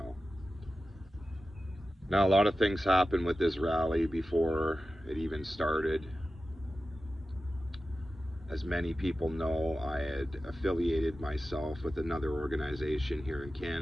Now, a lot of things happened with this rally before it even started. As many people know, I had affiliated myself with another organization here in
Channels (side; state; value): both; normal; correlation 0.93